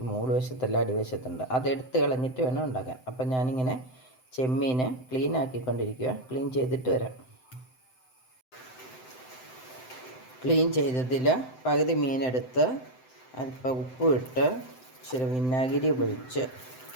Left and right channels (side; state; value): right; late; 7.8 ms